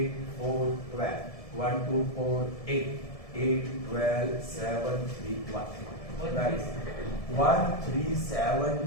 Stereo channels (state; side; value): late; right; 1.7 ms